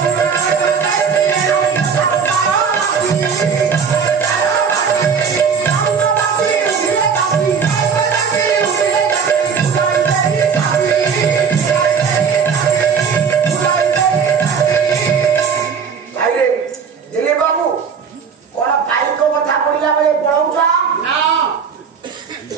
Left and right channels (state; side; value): quieter; left; 6.3 dB